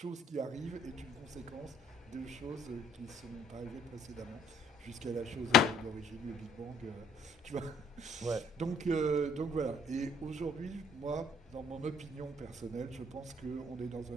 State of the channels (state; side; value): normal; both; correlation 0.61